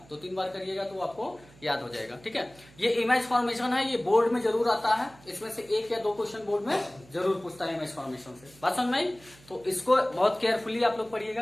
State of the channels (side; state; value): right; noise; hum, 25 dB below the sound